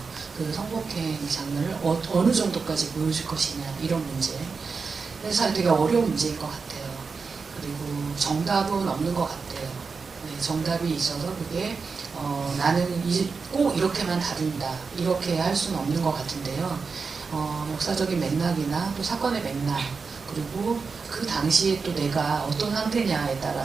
그 성폭행 장면을 어느 정도까지 보여줄 것이냐 이런 문제. 그래서 되게 어려운 문제인 것 같아요. 그리고 정답은 없는 것 같아요. 정답이 있어서 그게 나는 꼭 이렇게만 다룬다 이렇게 할 수는 없는 것 같은데요. 역사적인 맥락이나 또 사건의 맥락, 그리고 그 당시에 또 내가 어떤 상태냐에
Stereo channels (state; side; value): quieter; left; 4.9 dB